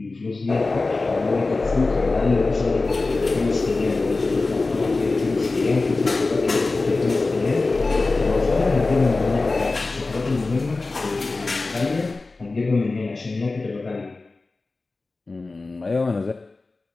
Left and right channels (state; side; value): quieter; right; 3.5 dB